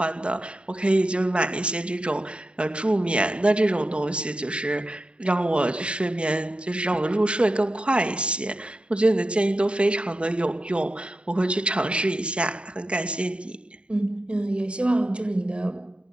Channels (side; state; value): left; late; 0.054 ms